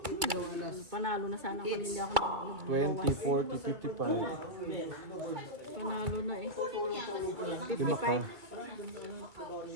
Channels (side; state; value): left; late; 2.3 ms